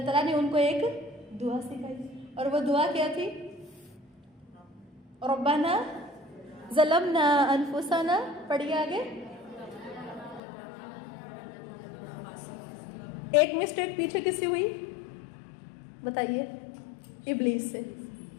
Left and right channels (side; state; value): right; drops out; at 10.4 s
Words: تعالیٰ نے ان کو ایک دعا سکھائی، اور وہ دعا کیا تھی؟ ربنا ظلمنا انفسنا، پڑھیے آگے۔ ایک مسٹیک پیچھے کس سے ہوئی بتائیے؟ ابلیس سے۔